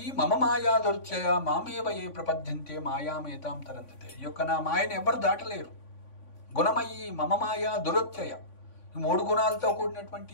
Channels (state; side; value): late; right; 3.5 ms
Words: మమ మాయా దుర్చయ మామేవ ఏ ప్రపద్యంతే మాయామేతాం తరంతతే. ఈ యొక్క నా మాయను ఎవరు దాటలేరు. గుణమయీ మమ మాయా దురత్యయ, ఈ 3 గుణాలతో కూడినటువంటి